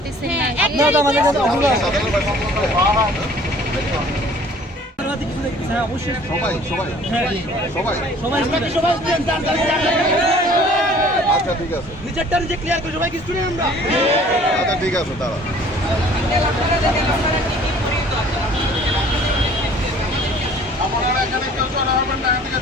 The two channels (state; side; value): normal; both; correlation 0.52